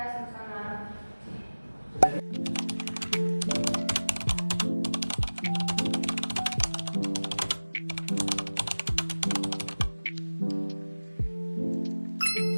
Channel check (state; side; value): inverted; both; correlation -1.00